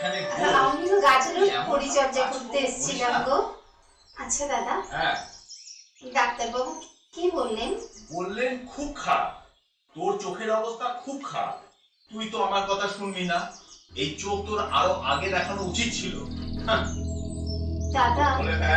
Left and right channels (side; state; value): both; identical; correlation 1.00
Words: বস। আমি তো গাছের পরিচর্যা করতে এসেছিলাম গো। আচ্ছা দাদা, হ্যাঁ ডাক্তারবাবু কি বললেন? বললেন খুব খারাপ, তোর চোখের অবস্থা খুব খারাপ। তুই তো আমার কথা শুনবি না, এই চোখ তোর আরো আগে দেখানো উচিত ছিল। দাদা, বলে